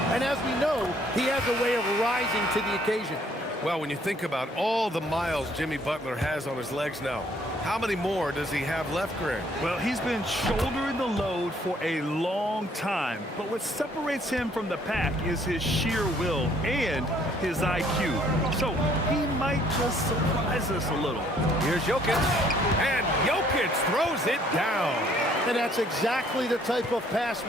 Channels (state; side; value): normal; both; correlation 0.63